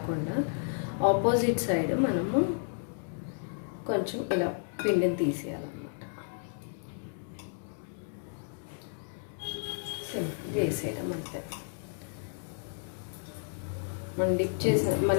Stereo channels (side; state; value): right; silent; digital silence